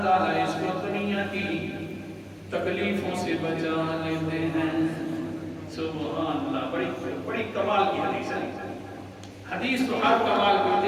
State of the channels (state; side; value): identical; both; correlation 1.00